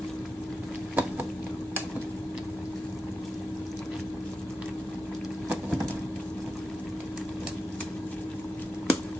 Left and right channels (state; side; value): normal; both; correlation 0.89